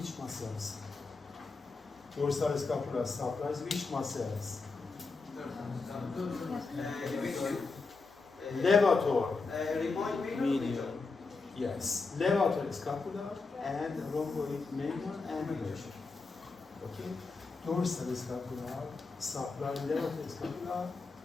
muscles? Dorsal scapular supplies which muscles? Levator. Remind me. Medial. Yes. Levator scapular and rhomboid major and major. Okay. Dorsal scapular supply levator scapular,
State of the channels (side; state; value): right; quieter; 4.1 dB